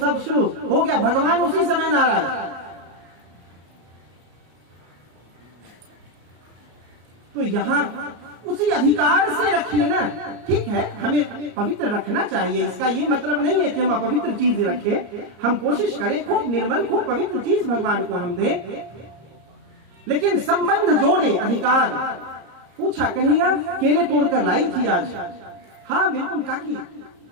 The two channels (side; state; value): left; late; 34 ms